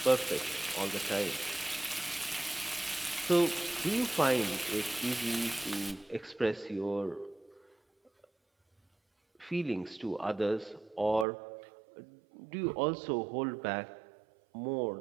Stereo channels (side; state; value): left; drops out; at 11.2 s